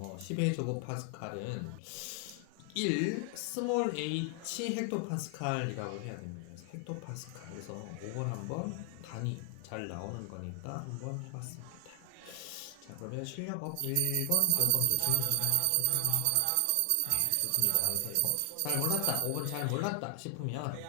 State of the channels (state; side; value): different; both; correlation 0.00